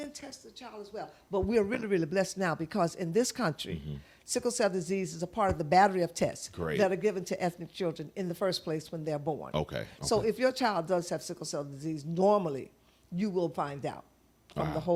test the child as well. But we're really, really blessed now because in this country, sickle cell disease is a part of the battery of tests Great. that are given to ethnic children in the first place when they're born. Okay. So if your child does have sickle cell disease, normally you will find out from the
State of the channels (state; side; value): identical; both; correlation 1.00